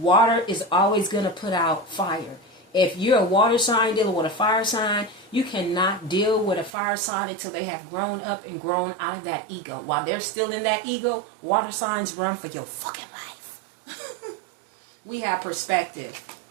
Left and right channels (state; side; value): drops out; left; at 6.7 s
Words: is always going to put out fire. If you're a water sign dealing with a fire sign, you cannot deal with a fire sign until they have grown up and grown out of that ego. While they're still in that ego, water signs run for your fucking life. We have perspective.